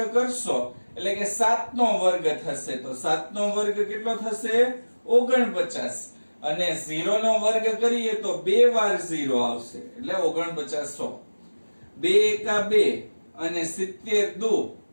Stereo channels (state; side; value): inverted; both; correlation -1.00